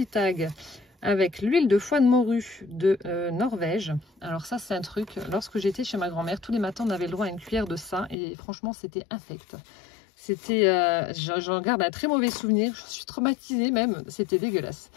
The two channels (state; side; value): drops out; right; at 8.2 s